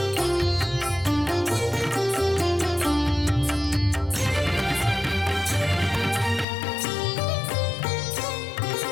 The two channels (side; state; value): right; drops out; at 6.5 s